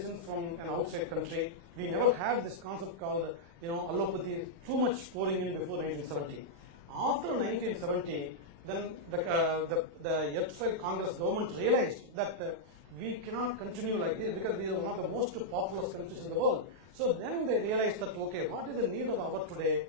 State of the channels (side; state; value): left; late; 36 ms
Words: from an outside country. We never had this concept called, allopathy, too much pouring in before 1970. After 1970, then the erstwhile Congress government realized that we cannot continue like this because we are one of the most populous countries in the world. So then they realized that, okay, what is the need of the hour today?